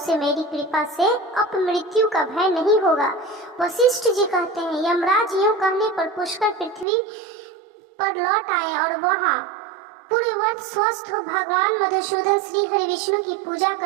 मेरी कृपा से अपमृत्यु का भय नहीं होगा। वशिष्ठ जी कहते हैं, यमराज यूं कहने पर पुष्कर पृथ्वी पर लौट आए और वहां पूरे वर्ष स्वस्थ हो भगवान मधुसूदन श्री हरि विष्णु की पूजा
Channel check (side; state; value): left; drops out; at 6.9 s